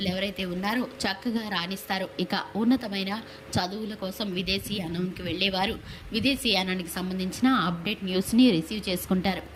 ఎవరైతే ఉన్నారో చక్కగా రాణిస్తారు. ఇక ఉన్నతమైన చదువుల కోసం విదేశీయానానికి వెళ్ళేవారు విదేశీయానానికి సంబంధించిన అప్డేట్ న్యూస్ని రిసీవ్ చేసుకుంటారు.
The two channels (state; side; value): identical; both; correlation 1.00